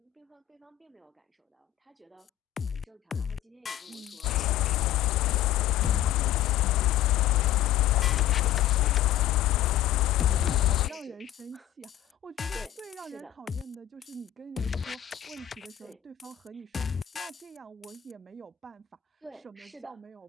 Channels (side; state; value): right; quieter; 12.9 dB